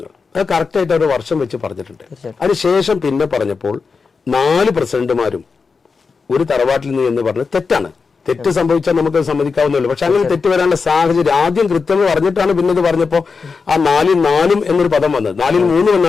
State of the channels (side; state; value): right; quieter; 4.9 dB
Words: അത് കറക്റ്റായിട്ട് ഒരു വർഷം വെച്ച് പറഞ്ഞിട്ടുണ്ട്. അതിനുശേഷം പിന്നെ പറഞ്ഞപ്പോൾ 4 പ്രസിഡന്റുമാരും ഒരു തറവാട്ടിൽ നിന്ന് എന്ന് പറഞ്ഞത് തെറ്റാണ്. തെറ്റ് സംഭവിച്ചാൽ നമുക്ക് സമ്മതിക്കാവുന്നല്ലോ. പക്ഷെ അങ്ങനെ തെറ്റ് വരാനുള്ള സാഹചര്യം ആദ്യം കൃത്യം പറഞ്ഞിട്ടാണ് പിന്നെ ഇത് പറഞ്ഞപ്പോ ആ 4 എന്നൊരു പദം വന്നത്. 3